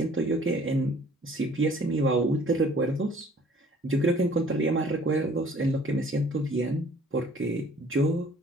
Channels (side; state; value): both; normal; correlation 0.54